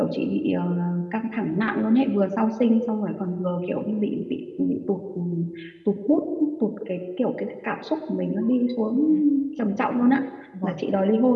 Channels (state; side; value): identical; both; correlation 1.00